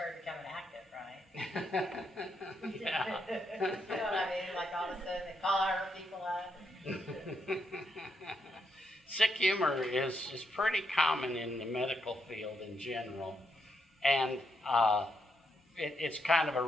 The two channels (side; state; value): both; normal; correlation 0.80